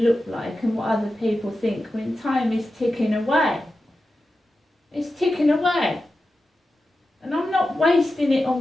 like and what other people think when time is ticking away? It's ticking away. And I'm not wasting it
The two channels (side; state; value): both; normal; correlation 0.92